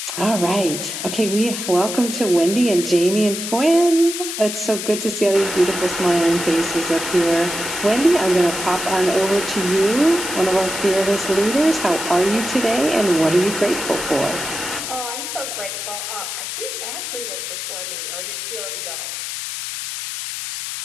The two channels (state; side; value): noise; left; hiss, 6 dB below the sound